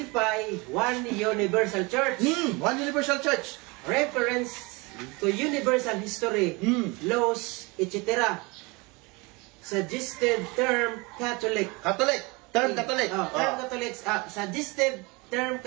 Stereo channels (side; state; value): left; quieter; 26.6 dB